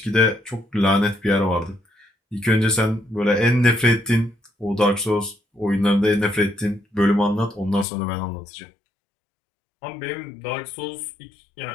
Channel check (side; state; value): right; drops out; at 7.9 s